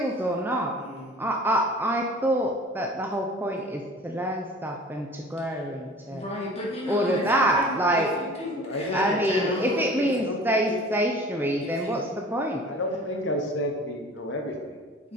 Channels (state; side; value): normal; both; correlation 0.44